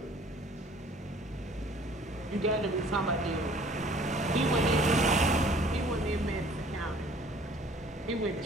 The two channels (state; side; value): normal; both; correlation 0.53